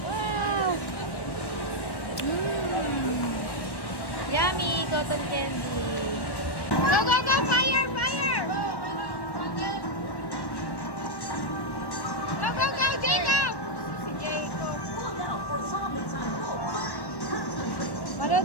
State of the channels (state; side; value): late; right; 1.2 ms